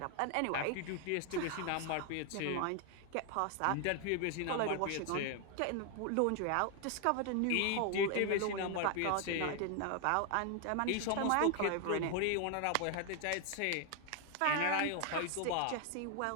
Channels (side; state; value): both; different; correlation 0.01